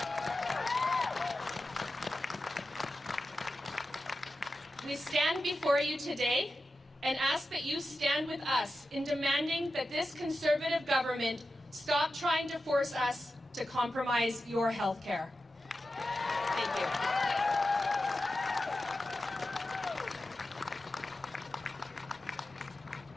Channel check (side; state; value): both; normal; correlation 0.92